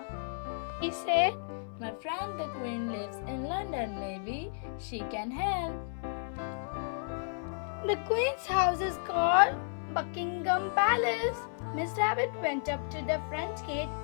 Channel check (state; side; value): silent; right; 56 dB below the other